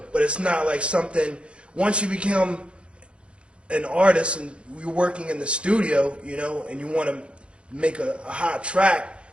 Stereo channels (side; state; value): left; late; 0.059 ms